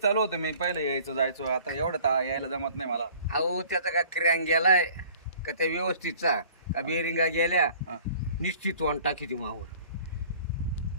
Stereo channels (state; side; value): inverted; both; correlation -0.51